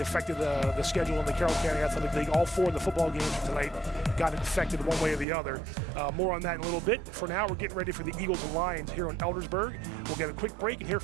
affected the schedule in the Carroll County Athletic League. All 4 of the football games for tonight got affected one way or the other. More on that in a little bit. For now, we're getting ready for the Eagles and Lions here in Eldersburg. We'll get a quick break and hear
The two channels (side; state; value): left; drops out; at 5.2 s